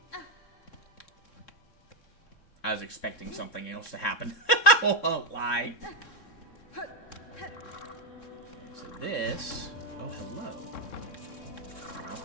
I was expecting something else to happen. I won't lie. So this... Oh, hello. I'll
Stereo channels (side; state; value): right; late; 3.6 ms